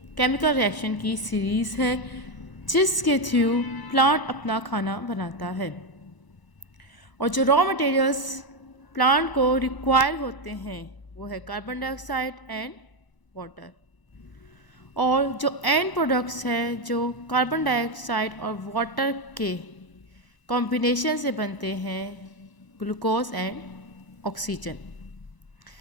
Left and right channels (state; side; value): late; right; 1.0 ms